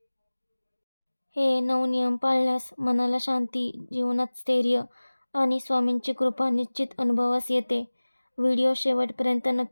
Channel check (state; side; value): inverted; both; correlation -1.00